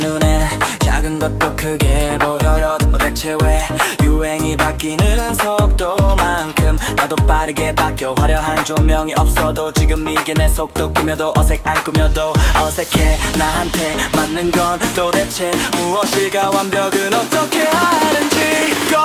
작은 것도 크게 보여요. 대체 왜 유행이 바뀌는 속도만큼 나도 빠르게 바뀌어. 화려한 조명이 없어도 지금 이게 내 속도. 꾸며도 안 꾸며도 어색해. 나한테 맞는 건 도대체 무엇일까? 완벽은 어떻게 하는지.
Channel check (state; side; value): identical; both; correlation 1.00